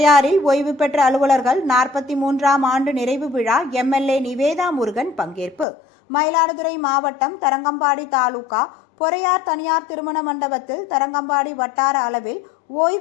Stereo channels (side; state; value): right; drops out; at 5.7 s